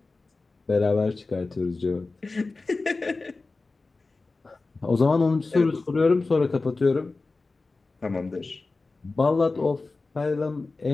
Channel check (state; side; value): quieter; right; 3.6 dB